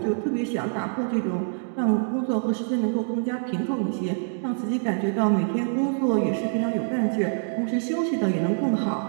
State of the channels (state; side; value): silent; left; digital silence